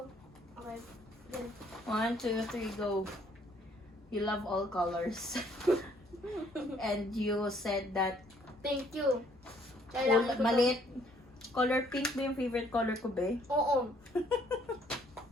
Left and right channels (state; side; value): normal; both; correlation 0.64